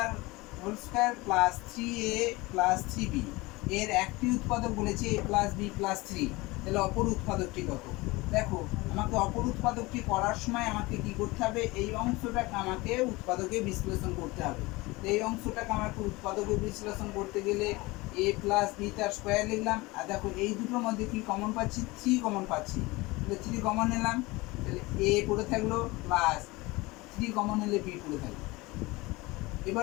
whole square plus 3a plus 3b এর একটি উৎপাদক বলেছে a প্লাস বি প্লাস 3, তাহলে অপর উৎপাদকটি কত? দেখো আমাকে অপর উৎপাদকটি করার সময় আমাকে কি করতে হবে, এই অংশটাকে আমাকে উৎপাদকে বিশ্লেষণ করতে হবে। তো এই অংশটাকে আমাকে উৎপাদকে বিশ্লেষণ করতে গেলে a প্লাস বি তার স্কোয়ার লিখলাম, আর দেখো এই দুটোর মধ্যে কি কমন পাচ্ছি, 3 কমন পাচ্ছি, তাহলে 3 কমন নিলাম, তাহলে a পড়ে থাকলো প্লাস 3 কমন নিলে b পড়ে থাকলো। এবার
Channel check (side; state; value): right; quieter; 22.3 dB